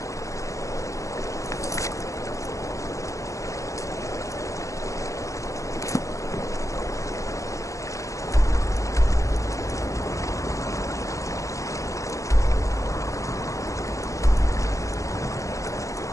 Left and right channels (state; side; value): late; right; 0.15 ms